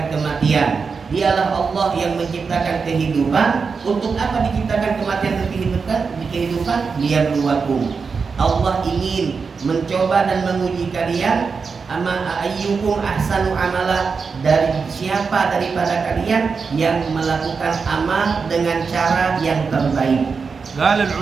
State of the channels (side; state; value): left; quieter; 5.2 dB